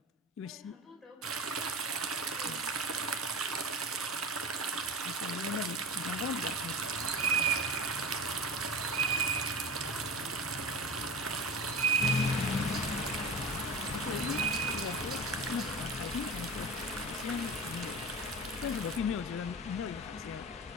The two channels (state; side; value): normal; both; correlation 0.31